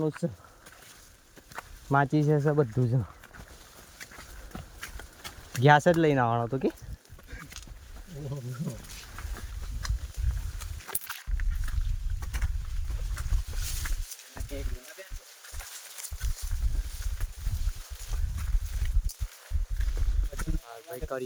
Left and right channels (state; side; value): identical; both; correlation 1.00